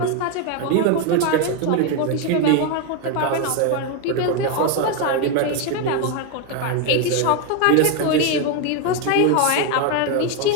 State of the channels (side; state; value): both; different; correlation 0.02